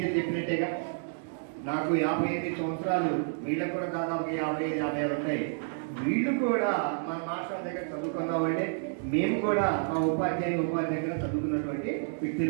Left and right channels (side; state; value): left; silent; digital silence